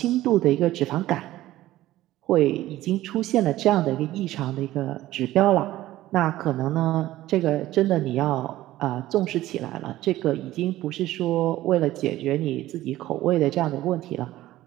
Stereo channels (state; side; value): quieter; left; 15.4 dB